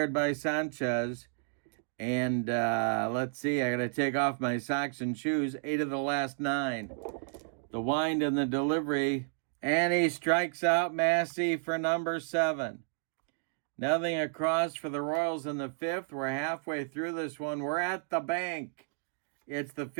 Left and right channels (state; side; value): silent; left; digital silence